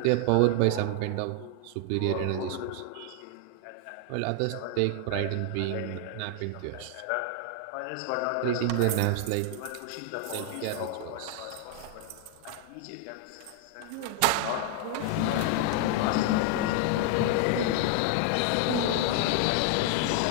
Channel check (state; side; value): different; both; correlation 0.00